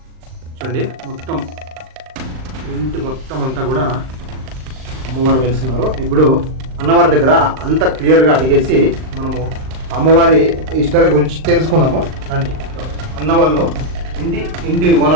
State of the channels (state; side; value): late; left; 39 ms